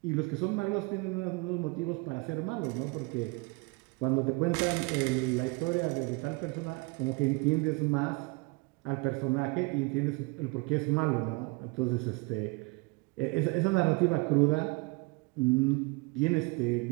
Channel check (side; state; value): left; quieter; 27.8 dB